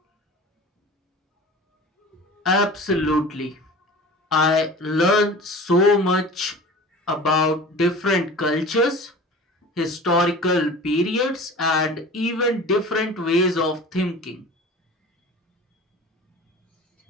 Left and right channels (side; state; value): both; normal; correlation 0.39